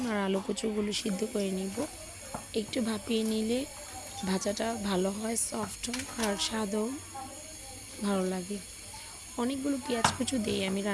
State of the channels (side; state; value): both; identical; correlation 1.00